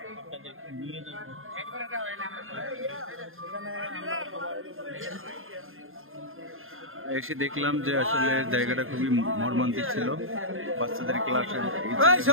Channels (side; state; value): left; late; 0.60 ms